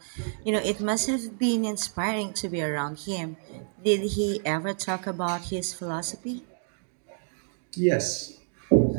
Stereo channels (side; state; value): left; silent; digital silence